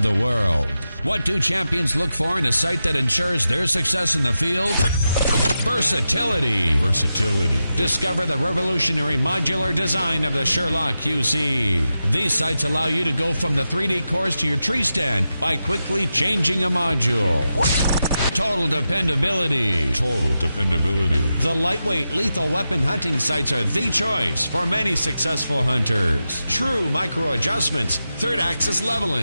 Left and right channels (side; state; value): both; inverted; correlation -0.90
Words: the world. What do champions look for in a sight that ensures their success in the field? Versatility. Discover the revolutionary modular design of the SURE-LOC QC. These sights allow you to go from the 3D course to your tree stand by quickly changing a module. Total dependability. The lightweight, lethal weapon hunting sights are the choice for many successful hunters. True micro adjustments, third axis